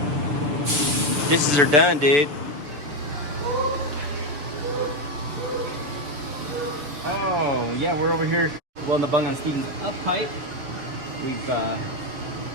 Dishes are done, dude. Oh, yeah, we're over here welding the bung on Steven's up pipe. We've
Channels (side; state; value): left; late; 7.0 ms